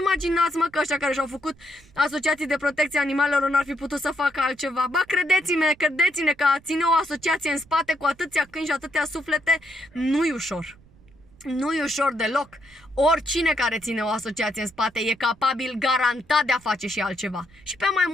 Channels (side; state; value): right; noise; rumble, 27 dB below the sound